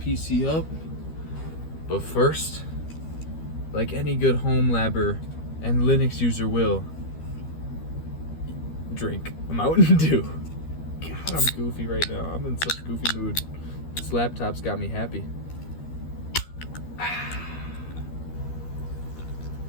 up. But first, like any good home labber and Linux user will, drink a Mountain Dew. God, I'm goofy right now. I'm in such a goofy mood. This laptop's got me happy.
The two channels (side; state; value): right; late; 13 ms